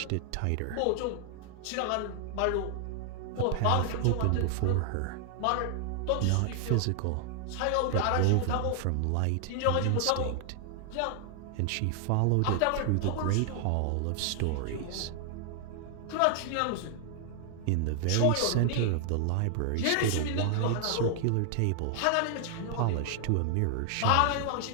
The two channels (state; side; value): different; both; correlation 0.00